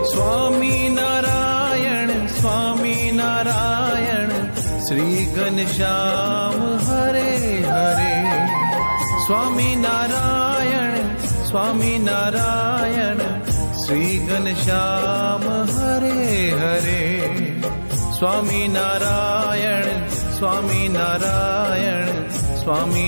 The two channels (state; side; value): inverted; both; correlation -1.00